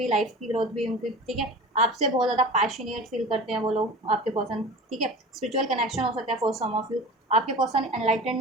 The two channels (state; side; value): normal; both; correlation 0.35